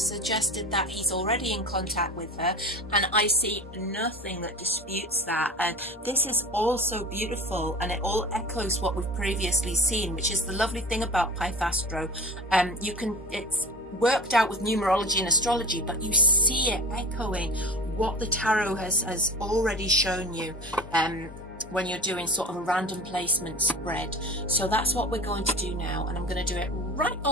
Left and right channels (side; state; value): both; normal; correlation 0.37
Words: suggested that he's already in contact with her, and I see nothing that disputes that. And this is also beautiful, and it all echoes what we've previously seen, which is the lovely thing about Pythastro. It's worked out with numerology and astrology, but you see it echoing what the tarot has already shown you when you're doing sort of a random placement spread. So that's what we're going to do now, and I'm going to do it right